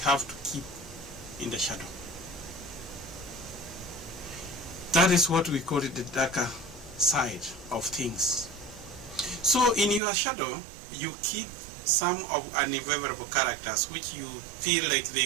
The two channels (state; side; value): drops out; left; at 10.0 s